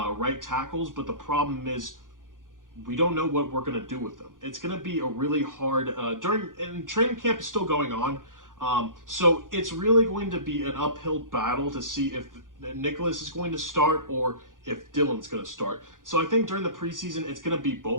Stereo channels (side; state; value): left; late; 0.89 ms